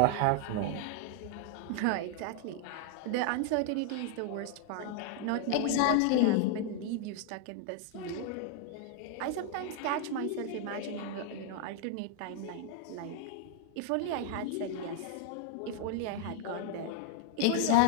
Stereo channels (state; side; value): different; both; correlation 0.00